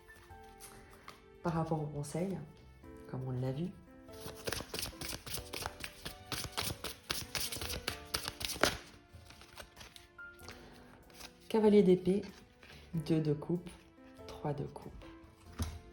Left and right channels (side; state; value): both; identical; correlation 1.00